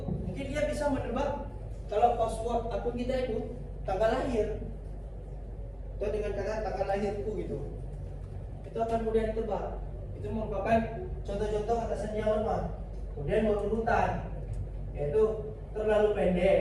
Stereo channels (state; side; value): identical; both; correlation 1.00